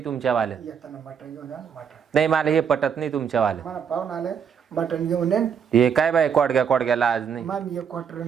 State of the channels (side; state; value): left; quieter; 7.4 dB